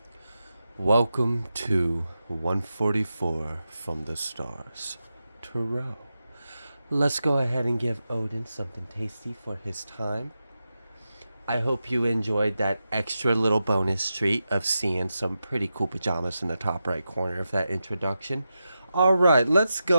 Welcome to 144 from the stars. Tarot. Let's go ahead and give Odin something tasty for his time. I hope you enjoyed that extra little bonus treat of seeing some pretty cool pajamas in the top right corner of that introduction. Alright, let's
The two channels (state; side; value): inverted; both; correlation -0.90